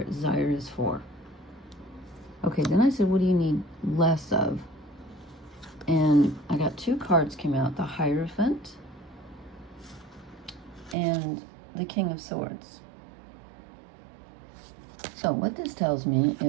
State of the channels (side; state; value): left; drops out; at 11.0 s